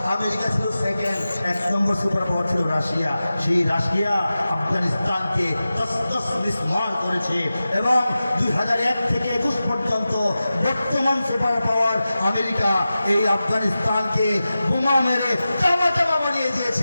আমেরিকা ছিল সেকেন্ড, 1 নম্বর সুপার পাওয়ার ছিল রাশিয়া। সেই রাশিয়া আফগানিস্তানকে তসতস বিস্মার করেছে এবং 2001 থেকে 21 পর্যন্ত বর্তমান সুপার পাওয়ার আমেরিকা এই আফগানিস্তানকে বোমা মেরে চামা চামা বানিয়ে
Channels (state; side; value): inverted; both; correlation -0.94